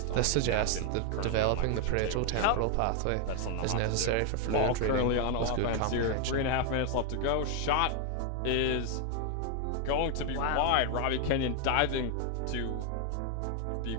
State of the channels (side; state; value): both; different; correlation 0.00